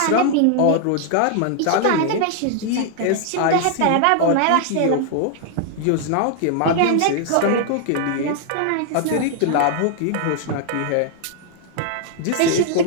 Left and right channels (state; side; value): different; both; correlation 0.00